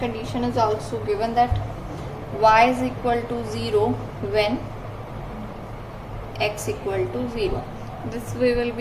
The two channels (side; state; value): both; identical; correlation 1.00